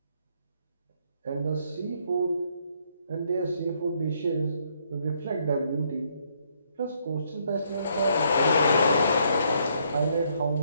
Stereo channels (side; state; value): both; inverted; correlation -0.71